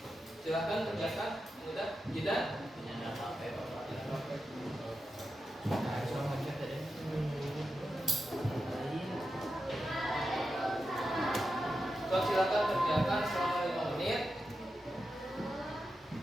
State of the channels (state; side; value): normal; both; correlation 0.89